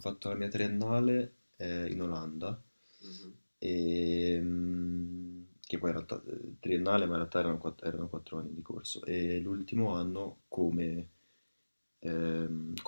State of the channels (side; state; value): both; inverted; correlation -1.00